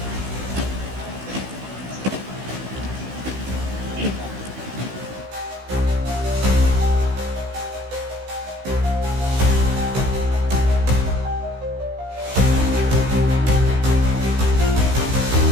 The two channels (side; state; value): left; late; 16 ms